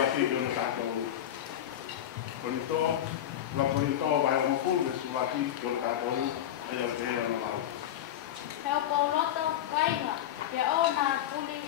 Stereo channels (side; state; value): right; quieter; 11.3 dB